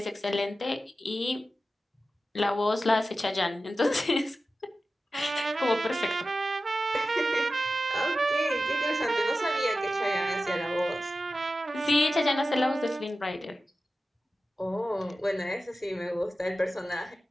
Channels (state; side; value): normal; both; correlation 0.93